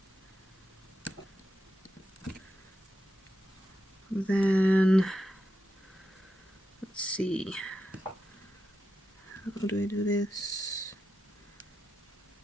Then, let's see, how do I do this?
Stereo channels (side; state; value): both; normal; correlation 0.87